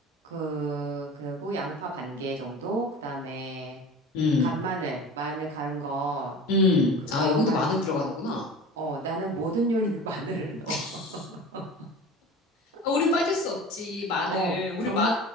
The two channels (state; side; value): normal; both; correlation 0.37